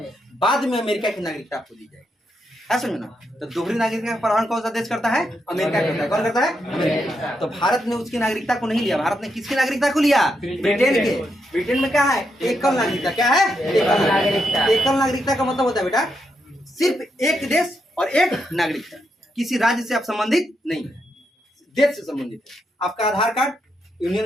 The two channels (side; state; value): both; normal; correlation 0.82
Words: बाद में अमेरिका की नागरिकता आपको दी जाएगी ऐसा ना। तो दोहरी नागरिकता का प्रावधान कौन सा देश करता है अमेरिका करता है। कौन करता है अमेरिका। तो भारत ने उसकी नागरिकता को नहीं लिया। भारत ने किसकी नागरिकता को लिया ब्रिटेन के। ब्रिटेन में क्या है एकल नागरिकता। क्या है एकल नागरिकता का मतलब होता है बेटा सिर्फ एक देश और एक नागरिकता। किसी राज्य से आप संबंधित नहीं है देश से संबंधित है। आपका आधार कार्ड यूनियन